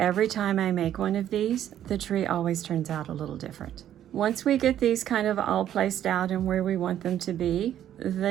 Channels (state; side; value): quieter; left; 11.0 dB